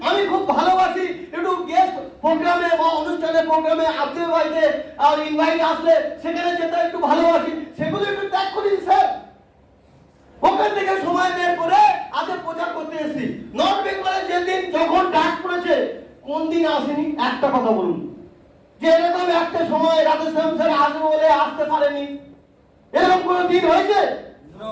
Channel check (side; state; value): both; identical; correlation 1.00